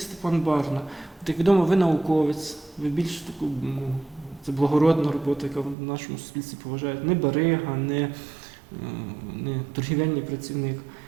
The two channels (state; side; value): drops out; left; at 5.8 s